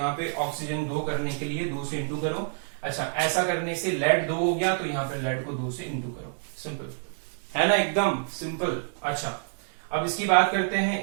पे ऑक्सीजन 2 करने के लिए 2 से इंटू करो। अच्छा, ऐसा करने से लेड 2 हो गया, तो यहाँ पे लेड को 2 से इंटू करो। सिंपल है ना, एकदम सिंपल। अच्छा, अब इसकी बात करते हैं।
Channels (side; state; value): left; silent; digital silence